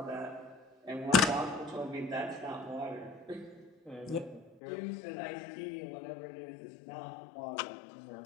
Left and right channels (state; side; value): drops out; right; at 4.6 s